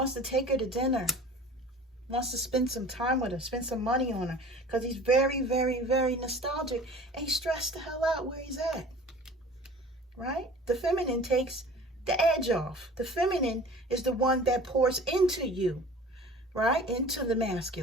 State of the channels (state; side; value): normal; both; correlation 0.43